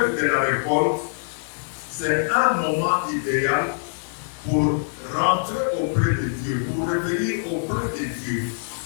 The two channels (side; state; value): right; silent; digital silence